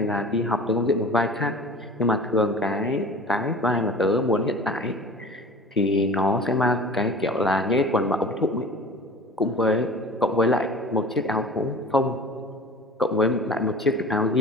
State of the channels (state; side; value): normal; both; correlation 0.40